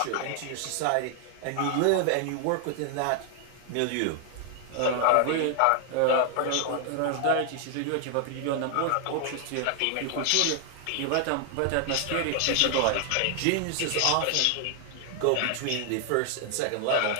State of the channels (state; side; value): different; both; correlation 0.00